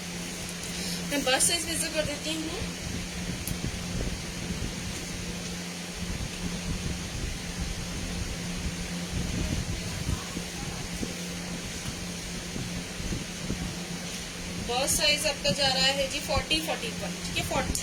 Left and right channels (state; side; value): identical; both; correlation 1.00